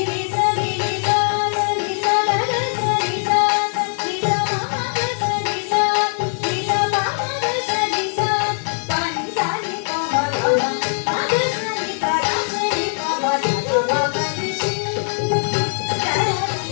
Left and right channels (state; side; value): silent; right; 65 dB below the other